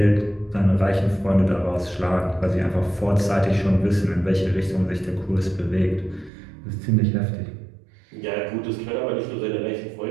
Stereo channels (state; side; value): drops out; left; at 6.3 s